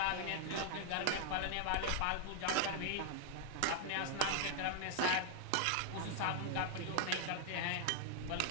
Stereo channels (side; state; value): both; different; correlation 0.00